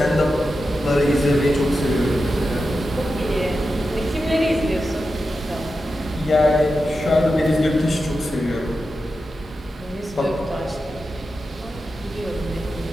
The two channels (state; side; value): normal; both; correlation 0.90